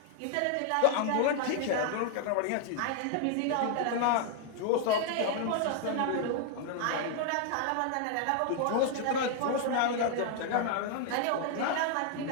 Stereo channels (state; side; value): different; both; correlation 0.00